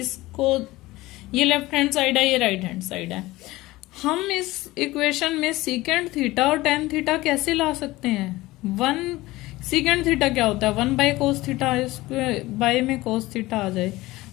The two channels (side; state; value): right; quieter; 18.8 dB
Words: ये लेफ्ट हैंड साइड है ये राइट हैंड साइड है, हम इस इक्वेशन में सीकेंट थीटा और टेन थीटा कैसे ला सकते हैं? 1 सीकेंट थीटा क्या होता है 1 बाय कोस थीटा, इसको बाय में कोस थीटा आ जाए,